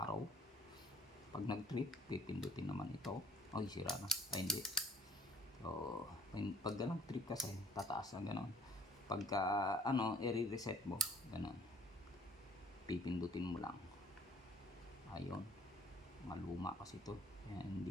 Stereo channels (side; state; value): both; normal; correlation 0.56